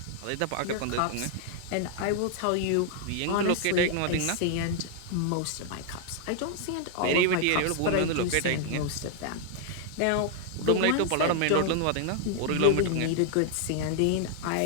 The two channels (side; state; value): both; different; correlation 0.00